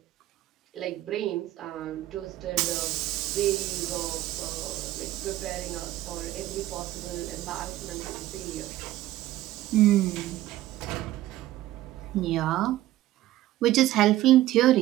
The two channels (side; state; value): left; quieter; 15.1 dB